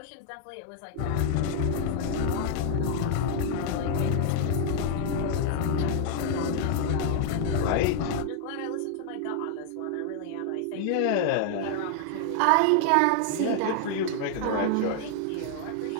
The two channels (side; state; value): both; different; correlation 0.00